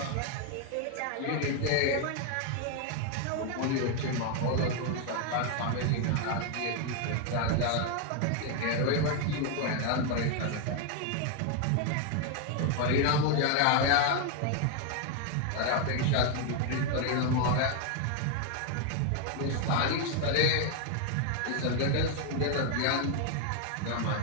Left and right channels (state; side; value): different; both; correlation 0.00